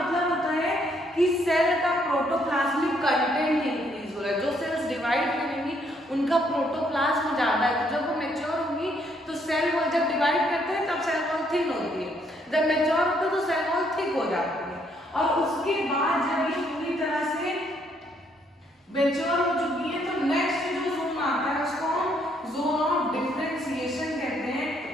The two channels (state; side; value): normal; both; correlation 0.70